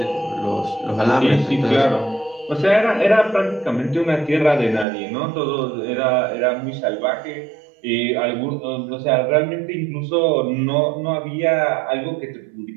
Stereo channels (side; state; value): left; drops out; at 4.9 s